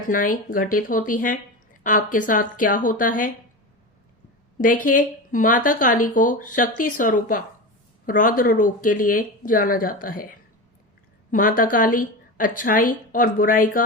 घटित होती हैं, आपके साथ क्या होता है। देखिए, माता काली को शक्ति स्वरूपा रौद्र रूप के लिए जाना जाता है। माता काली अच्छाई और बुराई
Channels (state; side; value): normal; both; correlation 0.24